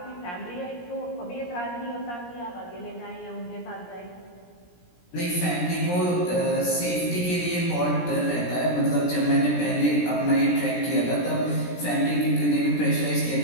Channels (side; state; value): right; late; 17 ms